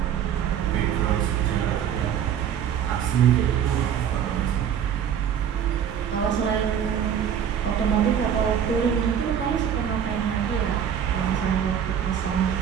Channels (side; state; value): left; quieter; 8.7 dB